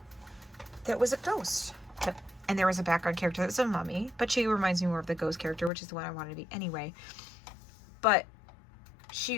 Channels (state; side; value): drops out; right; at 5.7 s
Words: that was a ghost. And there was a background character that was a mummy, but she reminds me more of the ghost character, which is the one I wanted to be anyway. But